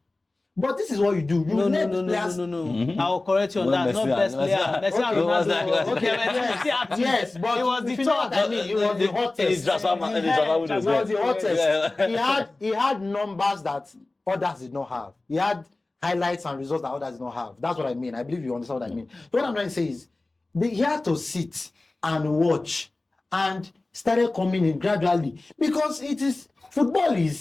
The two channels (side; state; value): right; quieter; 3.1 dB